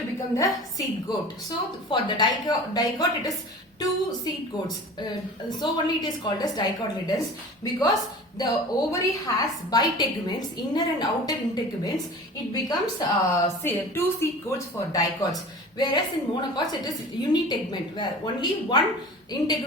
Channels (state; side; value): normal; both; correlation 0.39